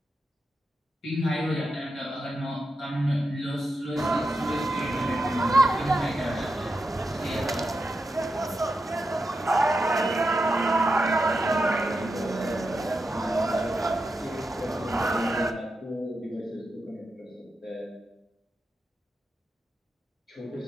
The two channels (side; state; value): both; normal; correlation 0.87